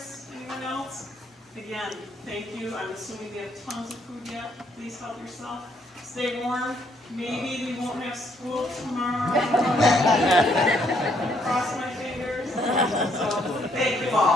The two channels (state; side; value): normal; both; correlation 0.70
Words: anyone else? Again, thank you. I'm assuming we have tons of food yet. Please help yourself. Stay warm. Maybe we won't have school tomorrow. Cross my fingers. So, thank you